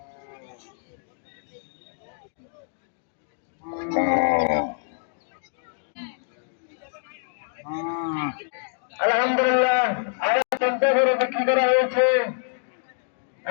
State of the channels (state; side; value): silent; right; digital silence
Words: আলহামদুলিল্লাহ আরো ৫০ করে বিক্রি করা হয়েছে